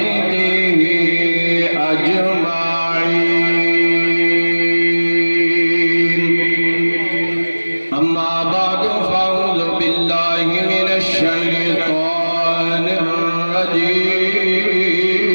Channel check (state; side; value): inverted; both; correlation -1.00